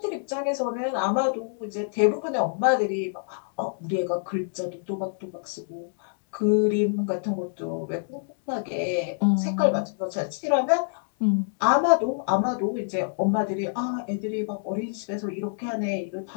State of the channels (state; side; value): silent; right; digital silence